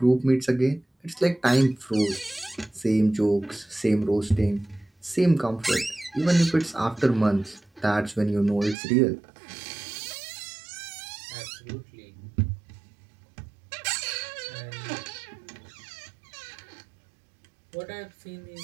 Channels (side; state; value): left; drops out; at 8.8 s